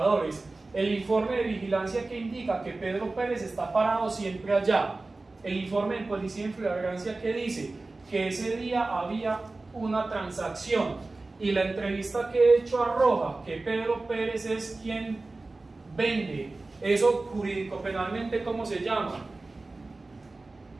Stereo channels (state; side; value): quieter; left; 3.3 dB